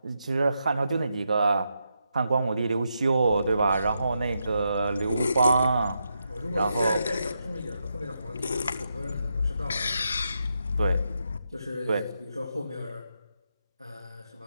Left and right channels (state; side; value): inverted; both; correlation -0.83